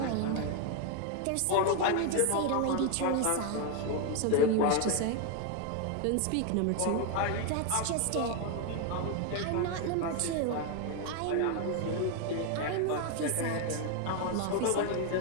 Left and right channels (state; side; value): different; both; correlation 0.01